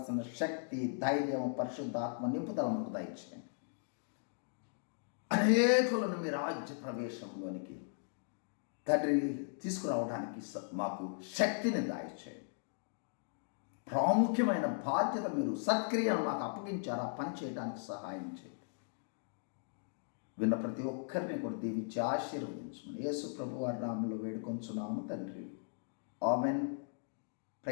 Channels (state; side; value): silent; right; digital silence